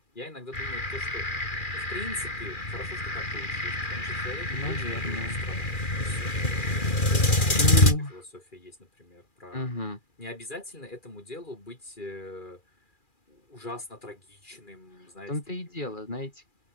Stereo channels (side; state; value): right; late; 2.4 ms